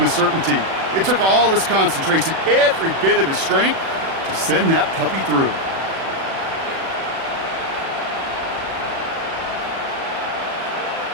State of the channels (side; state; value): left; late; 36 ms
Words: a certainty. It took all his concentration, every bit of his strength, to send that puppy through.